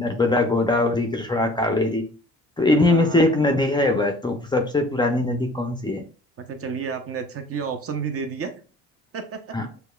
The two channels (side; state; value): both; normal; correlation 0.50